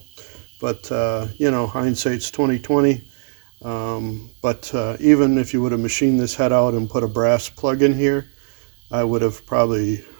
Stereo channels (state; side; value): silent; left; digital silence